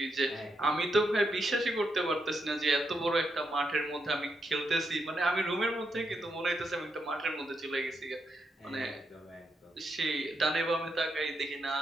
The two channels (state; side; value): normal; both; correlation 0.82